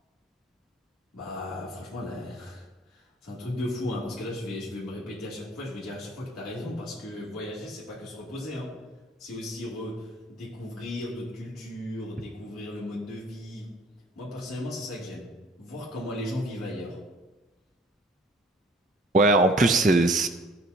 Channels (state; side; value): normal; both; correlation 0.53